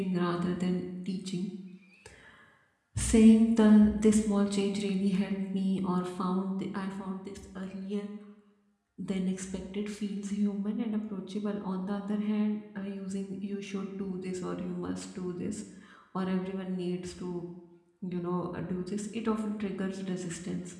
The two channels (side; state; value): both; identical; correlation 1.00